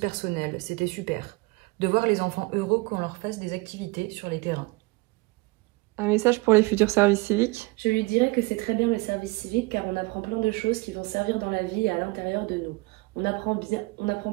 c'était super. De voir les enfants heureux qu'on leur fasse des activités sur les terrains. Un message pour les futurs services civiques. Je lui dirais que c'est très bien le service civique car on apprend plein de choses qui vont servir dans la vie et à l'intérieur de nous. On apprend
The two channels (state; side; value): quieter; left; 24.4 dB